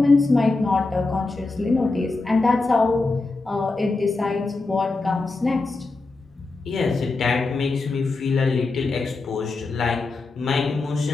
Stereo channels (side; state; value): right; quieter; 3.5 dB